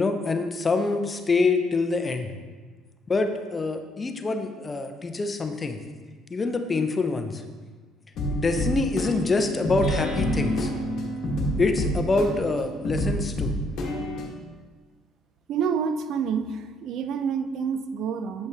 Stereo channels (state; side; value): normal; both; correlation 0.72